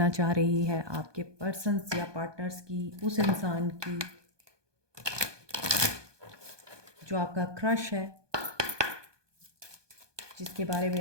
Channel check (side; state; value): left; late; 1.2 ms